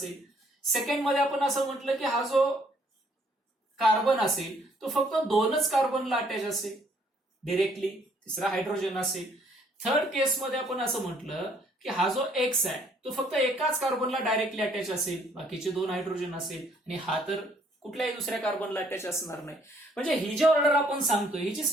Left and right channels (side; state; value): both; normal; correlation 0.64